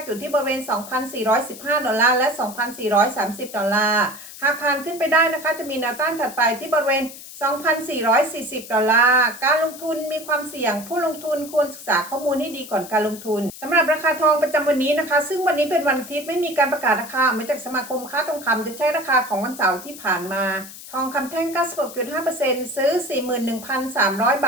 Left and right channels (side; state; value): left; noise; hiss, 15 dB below the sound